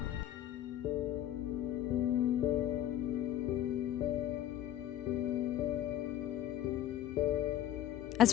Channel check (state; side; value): quieter; right; 12.1 dB